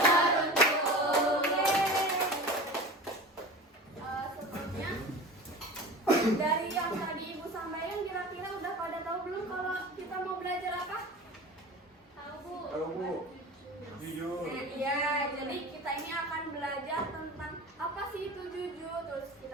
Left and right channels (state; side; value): normal; both; correlation 0.34